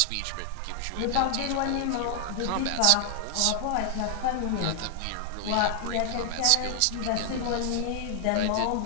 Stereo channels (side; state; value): both; different; correlation 0.00